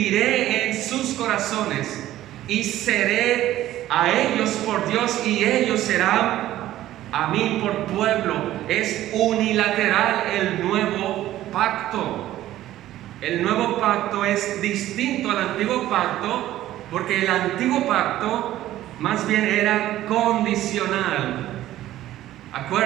en sus corazones, y seré a ellos por Dios y ellos serán a mí por pueblo. Es unilateral el nuevo pacto. El nuevo pacto es distinto al antiguo pacto, porque el antiguo pacto más bien era condicional.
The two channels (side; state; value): left; quieter; 14.0 dB